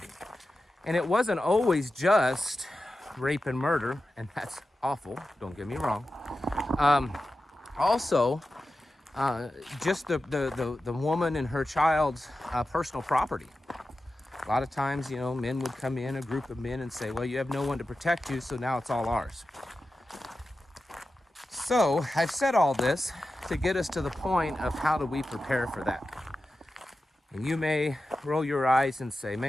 And it wasn't always just rape and murder, and that's awful, don't get me wrong. Also, just the woman and her child's personal property. A lot of times, men would come in, a group of men, and say, well, you have no one to protect you, so now it's all ours. So I've said all this to get us to the point of how do we prepare for that. And you may roll your eyes and say,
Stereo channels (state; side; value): normal; both; correlation 0.92